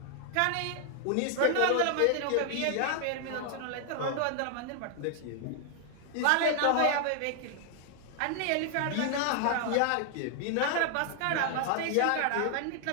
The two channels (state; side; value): different; both; correlation 0.00